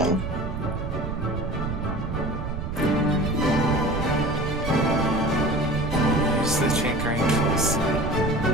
Use the tinkering tools.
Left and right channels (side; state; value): right; noise; rumble, 4 dB below the sound